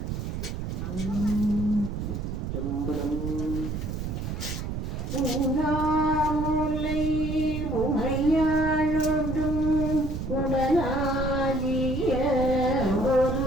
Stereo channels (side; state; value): right; noise; rumble, 4 dB below the sound